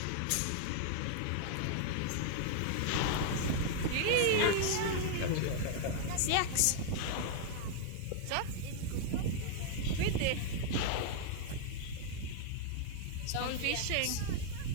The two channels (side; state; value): both; different; correlation -0.01